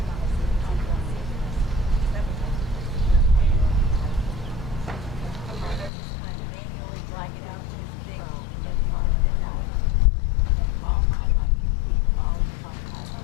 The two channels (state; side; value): drops out; right; at 5.9 s